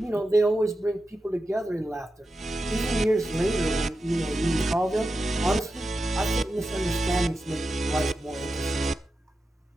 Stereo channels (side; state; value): both; normal; correlation 0.90